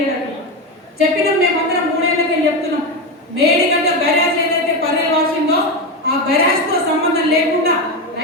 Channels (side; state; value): both; normal; correlation 0.15